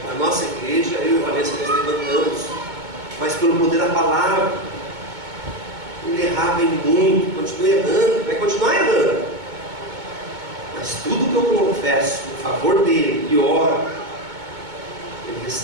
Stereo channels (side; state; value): left; late; 2.2 ms